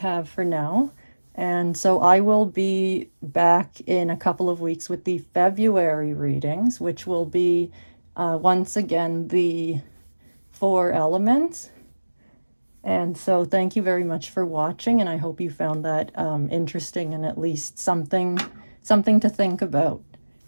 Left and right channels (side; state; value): both; inverted; correlation -1.00